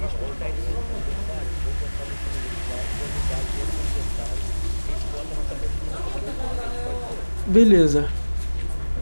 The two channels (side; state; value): both; inverted; correlation -1.00